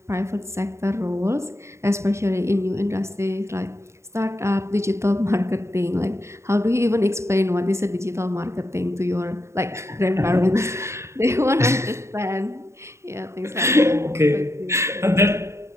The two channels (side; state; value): left; late; 0.13 ms